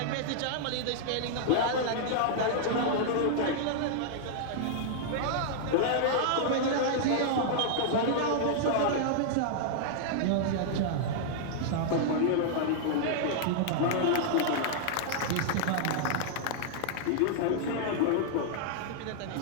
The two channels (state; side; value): different; both; correlation -0.01